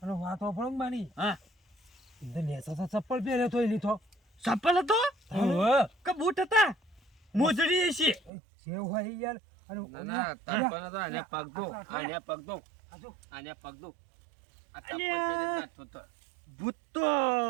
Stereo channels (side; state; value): left; drops out; at 8.3 s